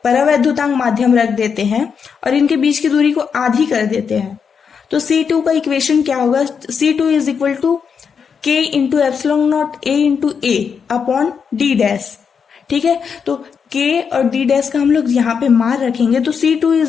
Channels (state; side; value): quieter; right; 6.4 dB